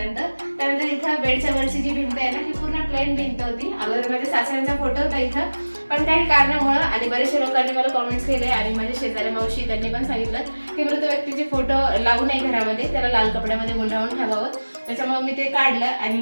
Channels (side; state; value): both; inverted; correlation -1.00